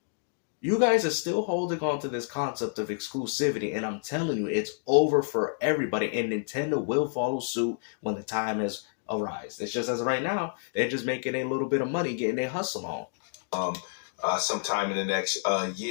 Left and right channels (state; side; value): silent; right; digital silence